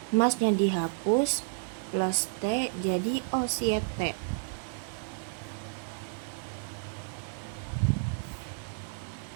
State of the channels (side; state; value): left; silent; digital silence